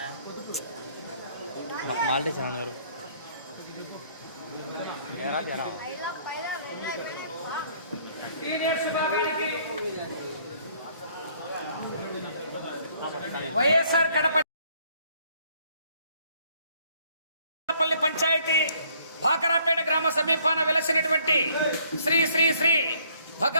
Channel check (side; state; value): both; inverted; correlation -0.63